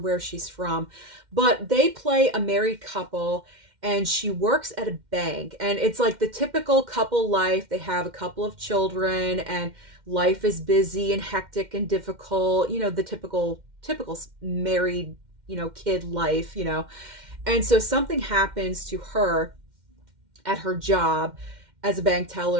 she's from. But they play a married couple, and she works at a bank. And it's like the typical couple life. They have a couple of children, and life is busy and hectic and difficult. You know, the typical married, you know, kid life, you know. And so something happens to her at her job as a bank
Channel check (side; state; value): left; late; 2.1 ms